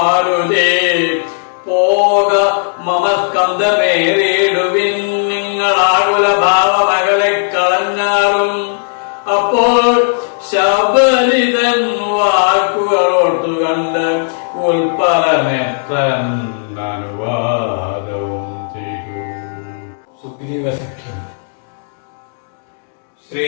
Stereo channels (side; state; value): right; silent; digital silence